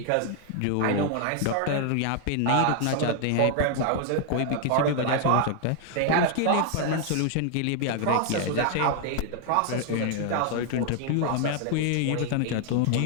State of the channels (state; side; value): different; both; correlation 0.00